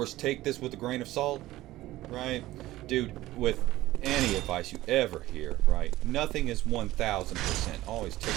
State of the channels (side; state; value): left; quieter; 16.4 dB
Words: take this with a grain of salt, right? Dude, with any advice you ever hear, right? Nothing is 1,000%. Always take